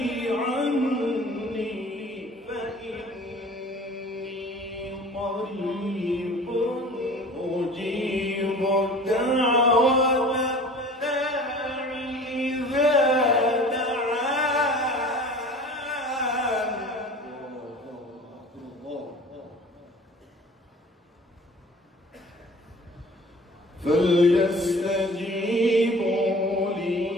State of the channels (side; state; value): both; normal; correlation 0.44